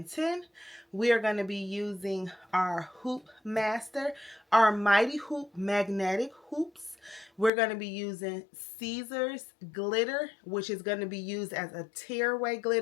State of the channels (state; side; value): drops out; right; at 7.5 s